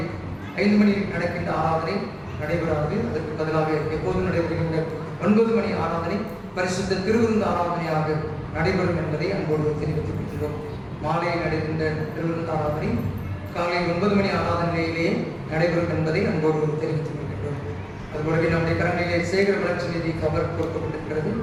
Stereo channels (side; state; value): both; identical; correlation 1.00